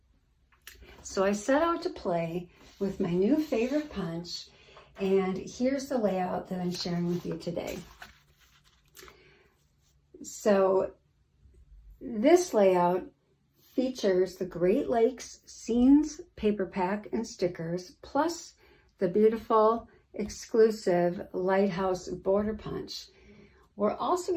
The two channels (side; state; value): both; identical; correlation 1.00